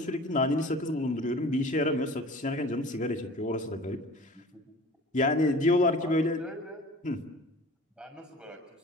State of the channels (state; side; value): normal; both; correlation 0.42